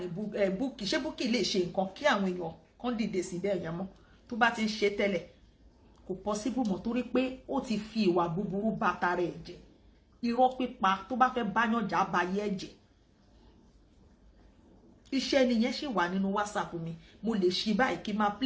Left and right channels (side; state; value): both; identical; correlation 1.00